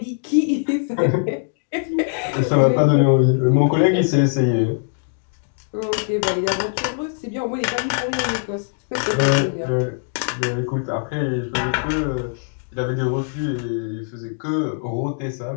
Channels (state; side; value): silent; right; digital silence